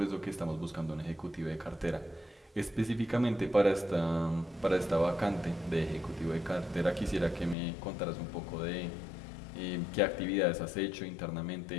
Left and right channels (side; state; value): right; drops out; at 7.6 s